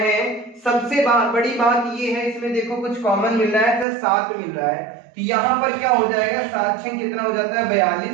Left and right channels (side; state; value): left; drops out; at 3.9 s